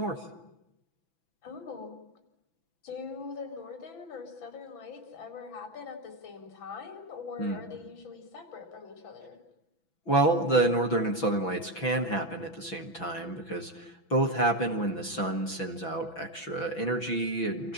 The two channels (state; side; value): late; right; 6.0 ms